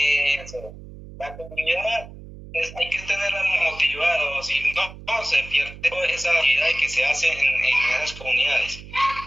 La comunidad hay que tenerla motivada, si no, se pierde toda esa actividad que se hace en esas comunidades.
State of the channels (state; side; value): noise; right; hum, 15 dB below the sound